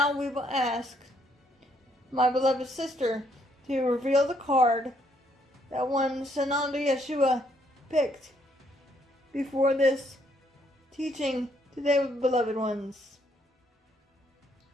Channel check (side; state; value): both; normal; correlation 0.70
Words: we will ask my beloved sister to reveal the card that one Sananda Yeshua picked before this teaching today, beloved ones.